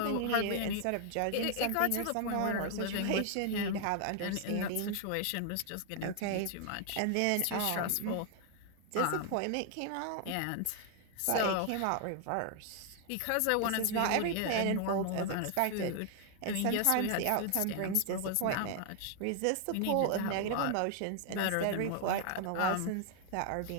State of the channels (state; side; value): different; both; correlation 0.00